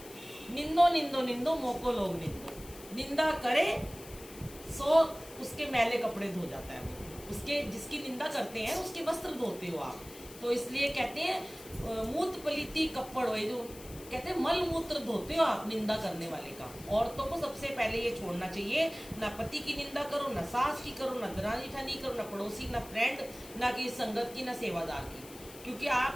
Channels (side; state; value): left; noise; hiss, 17 dB below the sound